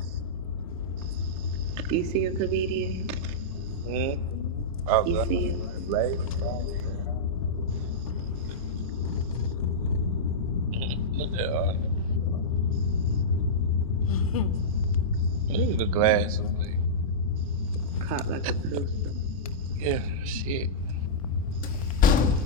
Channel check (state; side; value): normal; both; correlation -0.13